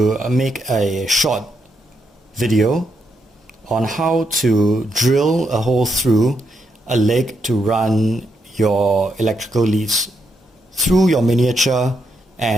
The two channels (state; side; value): normal; both; correlation 0.80